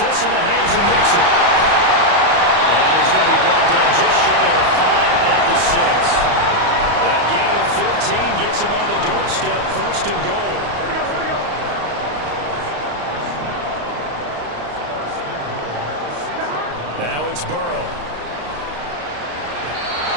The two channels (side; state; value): left; late; 34 ms